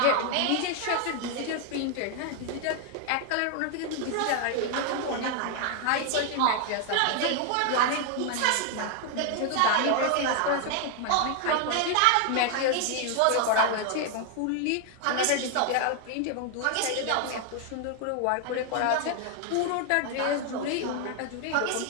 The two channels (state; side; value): different; both; correlation 0.00